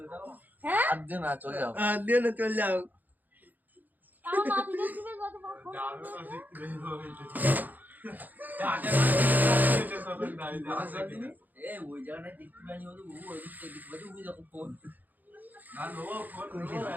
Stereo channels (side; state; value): left; late; 0.084 ms